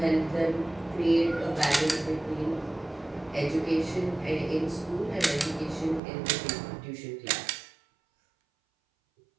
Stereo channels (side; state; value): left; drops out; at 6.0 s